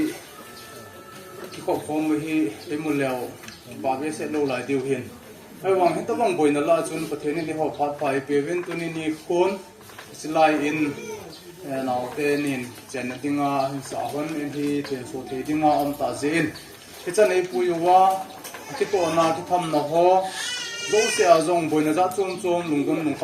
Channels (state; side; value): identical; both; correlation 1.00